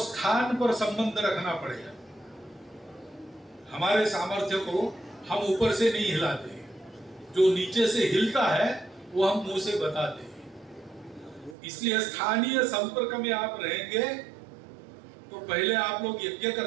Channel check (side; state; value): left; drops out; at 11.6 s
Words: पर संबंध रखना पड़ेगा। हमारे सामर्थ्य को हम ऊपर से नहीं हिलाते, जो नीचे से हिलता है वो हम मुंह से बताते हैं। इसलिए स्थानीय संपर्क में आप रहेंगे तो पहले आप लोग यज्ञ